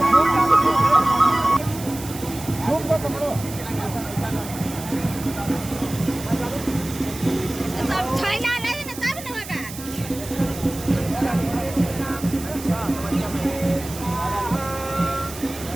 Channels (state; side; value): noise; right; hiss, 13 dB below the sound